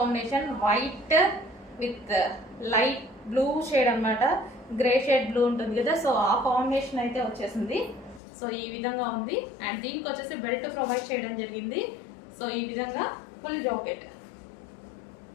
white with light blue shade అన్నమాట. గ్రే షేడ్ బ్లూ ఉంటుంది కదా, సో ఆ కాంబినేషన్ అయితే వచ్చేసింది. సో ఈ విధంగా ఉంది. అండ్ దీనికి వచ్చేసి బెల్ట్ ప్రొవైడ్ చేయడం జరిగింది. సో ఈ విధంగా ఫుల్ జాకెట్.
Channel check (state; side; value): drops out; right; at 8.2 s